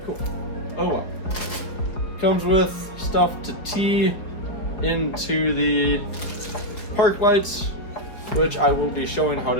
Oh well. Comes with stuff to tee into the park lights, which I will be showing how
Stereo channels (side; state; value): right; late; 4.9 ms